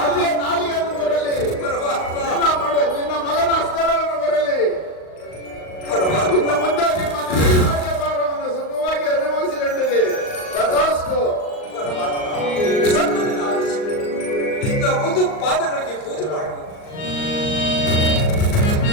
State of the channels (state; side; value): late; right; 38 ms